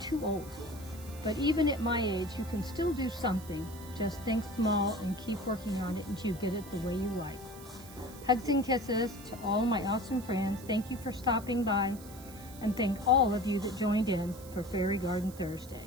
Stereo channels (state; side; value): noise; right; hiss, 18 dB below the sound